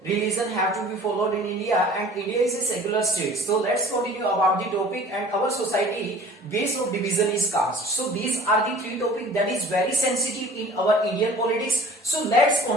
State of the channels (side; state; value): both; normal; correlation 0.46